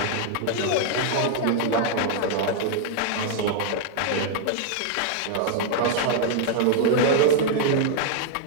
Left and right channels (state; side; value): different; both; correlation -0.01